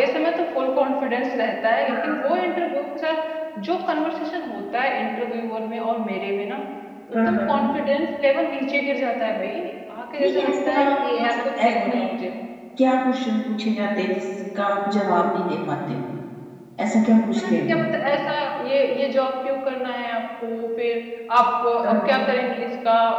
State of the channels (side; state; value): both; identical; correlation 1.00